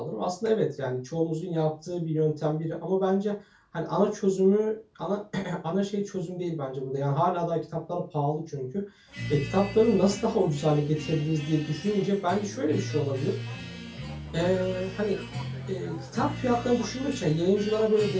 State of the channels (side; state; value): both; identical; correlation 1.00